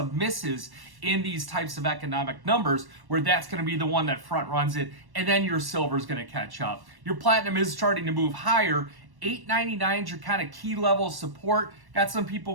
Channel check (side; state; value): left; late; 1.1 ms